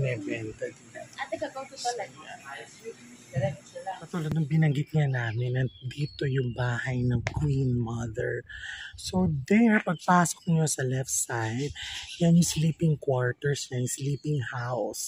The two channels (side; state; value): both; identical; correlation 1.00